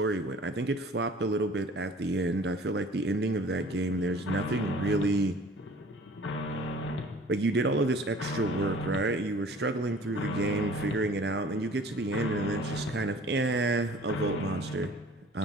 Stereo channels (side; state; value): both; normal; correlation 0.49